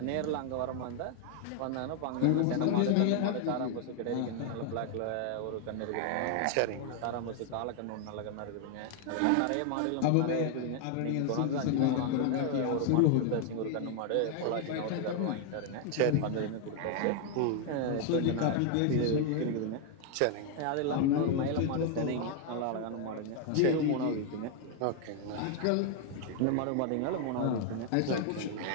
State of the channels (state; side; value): different; both; correlation 0.00